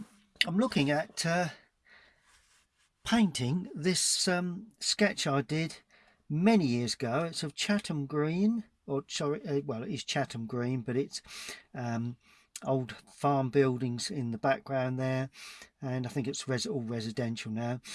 looking at painting this sketch I did many years ago. It's of Chatham Green, or sorry, well it is Chatham Green, but it's old farm buildings in the background there, and I think it's all residential now.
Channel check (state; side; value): identical; both; correlation 1.00